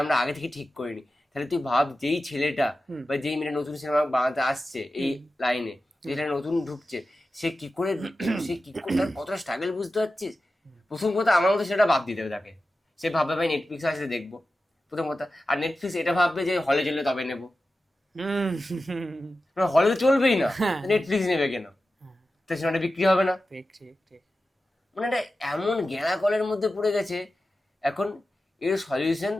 আমরা আগে থেকে ঠিক করিনি। তাহলে তুই ভাব, যেই ছেলেটা হুম। বা যেই মেয়েটা নতুন সিনেমা বানাতে আসছে এই লাইনে, যেটা নতুন ঢুকছে, সে কি করে তার কতটা স্ট্রাগল বুঝতে পারছিস? প্রথম কথা আমার মতো সেটা বাদ দিতে হবে তাকে, সে ভাববে ভাই নেটফ্লিক্সে আসলে দেখবো, প্রথম কথা। আর নেটফ্লিক্স এটা ভাববে যে হলে চললে তবে নেবো, হুম। হলে তো চলবেই না, হ্যাঁ। নেটফ্লিক্স নেবে কেন? তো সিনেমাটা বিক্রি হবে না। ঠিক ঠিক ঠিক। মানে এটা এমন গেঁড়া কলের মধ্যে পড়ে গেছে এখন। এর সলিউশন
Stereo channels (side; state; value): both; normal; correlation 0.93